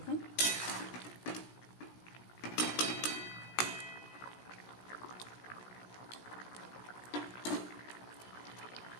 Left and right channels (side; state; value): right; late; 17 ms